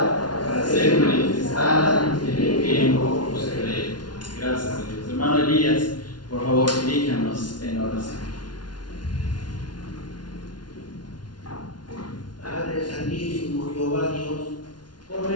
para ser manifestada en el tiempo posterior. Gracias a Dios. Hermano Elías, por favor, diríjanos en oración. Padre Santísimo, Jehová Dios, por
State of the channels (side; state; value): right; late; 0.70 ms